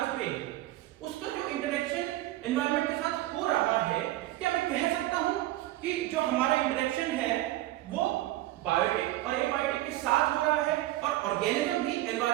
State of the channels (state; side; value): quieter; left; 15.9 dB